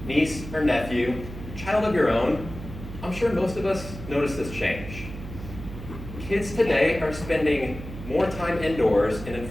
niece or nephew, child of your own, I'm sure most of us notice this change. Kids today are spending more time indoors and in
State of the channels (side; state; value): right; noise; hum, 11 dB below the sound